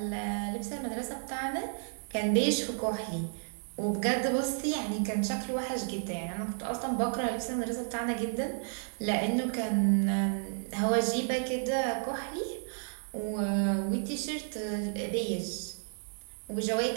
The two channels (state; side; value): silent; left; 55 dB below the other